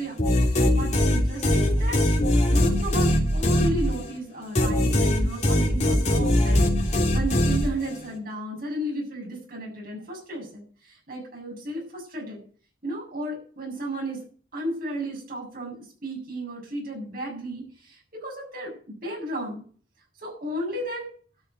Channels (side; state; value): both; normal; correlation 0.78